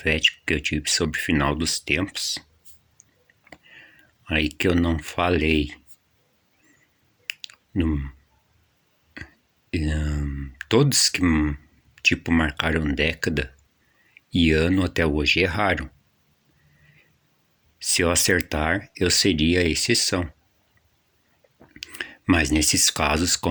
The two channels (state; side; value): identical; both; correlation 1.00